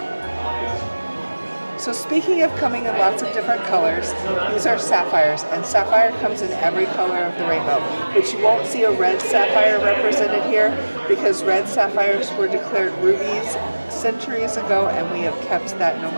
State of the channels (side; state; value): both; inverted; correlation -1.00